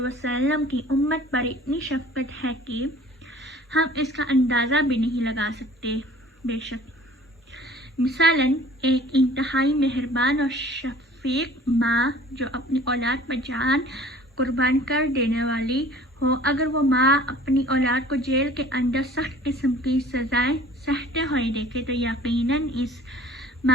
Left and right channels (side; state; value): both; normal; correlation 0.49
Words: وسلم کی امت پر اتنی شفقت ہے کہ ہم اس کا اندازہ بھی نہیں لگا سکتے۔ بے شک مثلاً ایک انتہائی مہربان اور شفیق ماں جو اپنی اولاد پر جان قربان کر دینے والی ہو، اگر وہ ماں اپنی اولاد کو جیل کے اندر سخت قسم کی سزائیں سہتے ہوئے دیکھے تو یقیناً اس